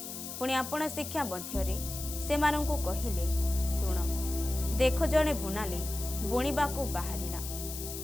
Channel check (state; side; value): noise; left; hiss, 8 dB below the sound